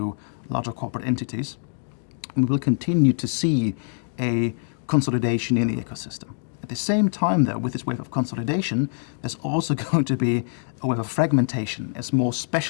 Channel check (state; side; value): silent; right; digital silence